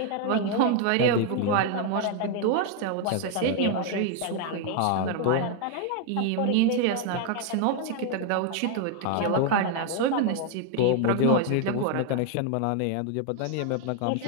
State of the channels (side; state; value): both; different; correlation 0.00